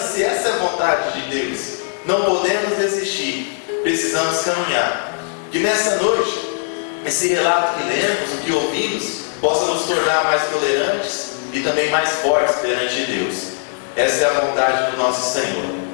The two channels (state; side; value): silent; right; 66 dB below the other